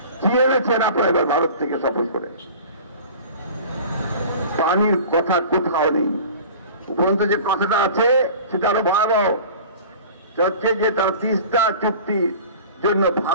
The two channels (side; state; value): both; inverted; correlation -0.40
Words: কি এনেছেন আপনারা এবার ভারত থেকে সফর করে? পানির কথা কোথাও নেই। উপরন্ত যে কথাটা আছে সেটা আরো ভয়াবহ, হচ্ছে যে তার তিস্তা চুক্তির জন্য